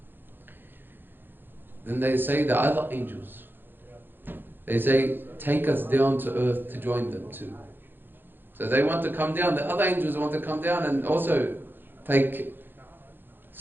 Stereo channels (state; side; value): late; left; 0.098 ms